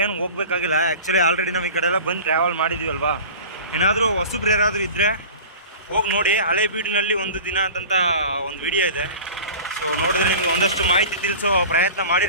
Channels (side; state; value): both; inverted; correlation -0.37